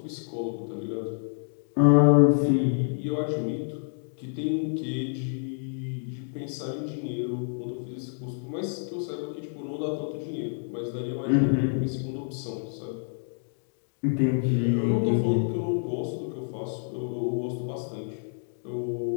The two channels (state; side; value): silent; right; digital silence